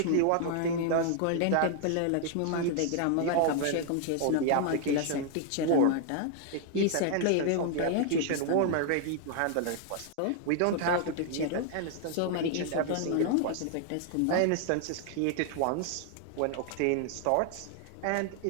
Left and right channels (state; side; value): different; both; correlation 0.00